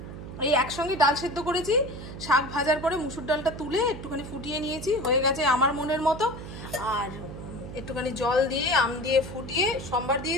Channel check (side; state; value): right; noise; hum, 11 dB below the sound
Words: এই একসঙ্গে ডাল সেদ্ধ করেছি, শাক ভাজার পরে মুসুর ডালটা তুলে একটুখানি ফুটিয়ে নিয়েছি, হয়ে গেছে আমার মনের মতো। আর একটুখানি জল দিয়ে আম দিয়ে ফুটিয়ে সম্বার